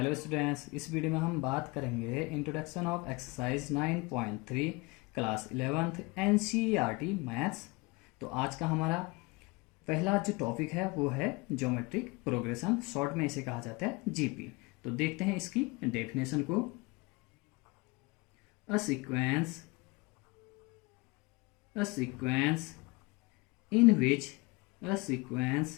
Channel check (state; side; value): quieter; right; 25.5 dB